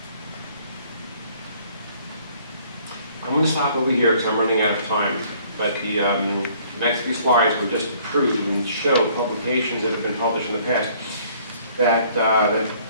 I'm going to stop over here because I'm running out of time. But the next few slides will just prove and show publications that have been published in the past that, that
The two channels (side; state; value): both; inverted; correlation -0.59